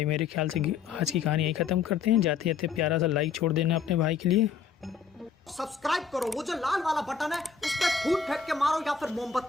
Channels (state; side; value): quieter; right; 6.2 dB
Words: मेरे ख्याल से आज की कहानी यही ख़त्म करते हैं। जाते जाते प्यारा सा लाइक छोड़ देना अपने भाई के लिए। सब्सक्राइब करो, वो जो लाल वाला बटन है उस पर फूट फेंक के मारो या फिर